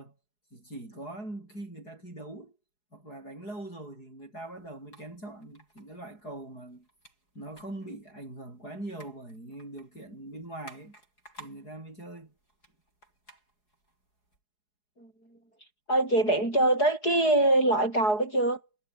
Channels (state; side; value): late; right; 4.8 ms